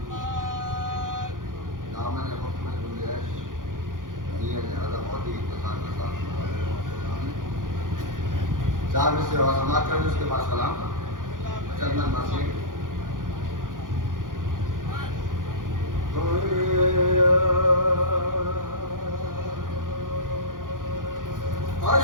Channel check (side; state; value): left; late; 0.89 ms